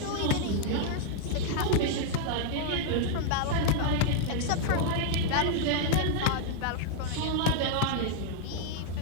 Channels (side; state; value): both; different; correlation -0.01